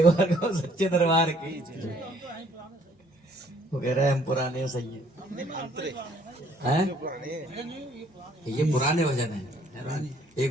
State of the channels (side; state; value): both; normal; correlation 0.62